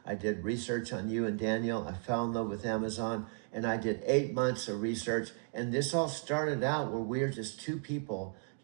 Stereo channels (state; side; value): silent; left; 55 dB below the other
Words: I did research on you and Daniel. I fell in love with Amazon, and I did 8 months of research. And this all started out where we were just two people.